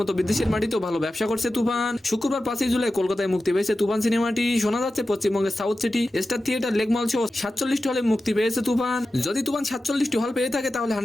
বিদেশের মাটিতেও ভালো ব্যবসা করছে তুফান। শুক্রবার 5 জুলাই কলকাতায় মুক্তি পেয়েছে তুফান সিনেমাটি। শোনা যাচ্ছে পশ্চিমবঙ্গের সাউথ সিটি স্টার থিয়েটার লেকমল সহ 47টি হলে মুক্তি পেয়েছে তুফান। যদি তুফান 47টি হল পেয়ে থাকে তাহলে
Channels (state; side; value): normal; both; correlation 0.93